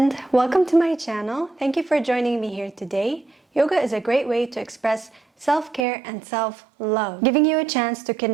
welcome to my channel. Thank you for joining me here today. Yoga is a great way to express self-care and self-love, giving you a chance to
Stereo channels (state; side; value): drops out; left; at 5.9 s